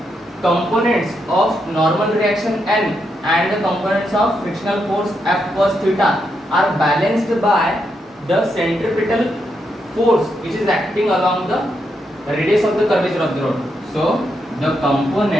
components of normal reaction n and the components of frictional force F cos theta are balanced by the centripetal force which is acting along the radius of the curvature of the rod. So the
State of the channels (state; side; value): normal; both; correlation 0.81